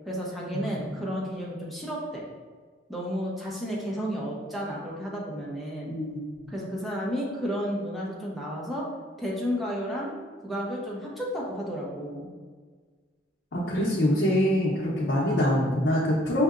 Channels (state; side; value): normal; both; correlation 0.63